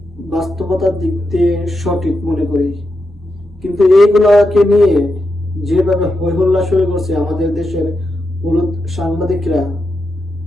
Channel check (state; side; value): normal; both; correlation 0.86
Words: বাস্তবতার দিক দিয়ে সঠিক মনে করি, কিন্তু এইগুলাকে নিয়ে যেভাবে হই হল্লা শুরু করছে আমাদের দেশের হলুদ সাংবাদিকরা,